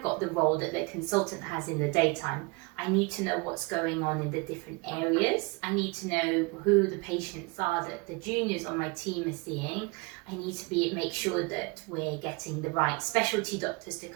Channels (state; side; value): quieter; left; 28.0 dB